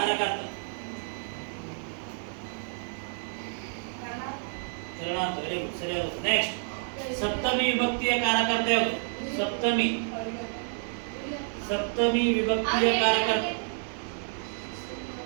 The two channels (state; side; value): silent; left; 58 dB below the other